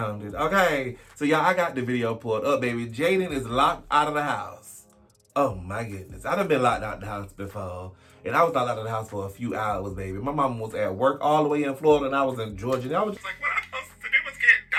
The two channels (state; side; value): identical; both; correlation 1.00